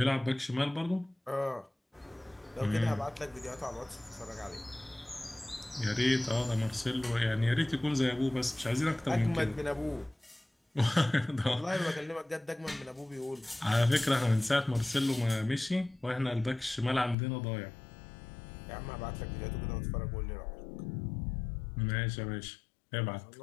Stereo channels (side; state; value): right; drops out; at 17.2 s